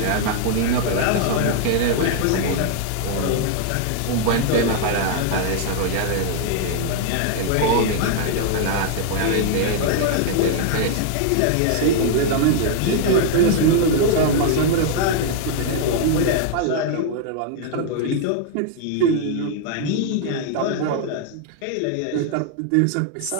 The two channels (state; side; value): different; both; correlation 0.00